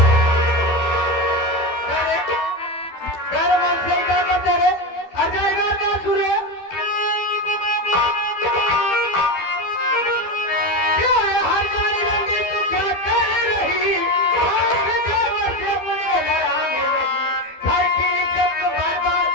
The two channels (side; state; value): right; late; 12 ms